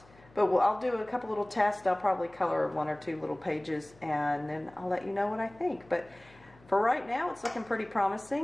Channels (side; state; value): left; noise; hum, 26 dB below the sound